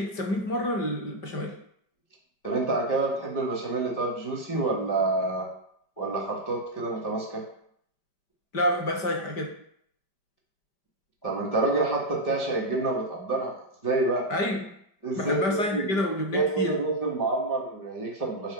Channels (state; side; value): late; right; 5.1 ms